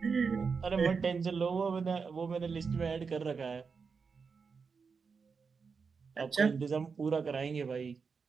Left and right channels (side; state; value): left; quieter; 5.3 dB